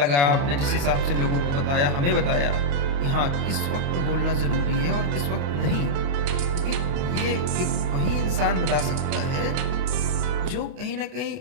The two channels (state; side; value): late; left; 28 ms